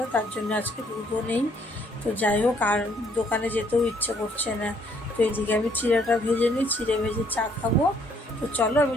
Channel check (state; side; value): normal; both; correlation 0.66